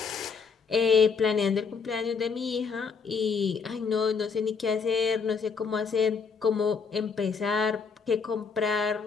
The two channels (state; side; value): quieter; right; 5.6 dB